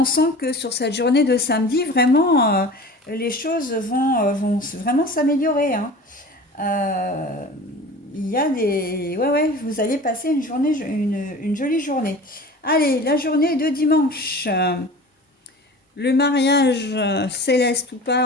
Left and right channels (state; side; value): normal; both; correlation 0.38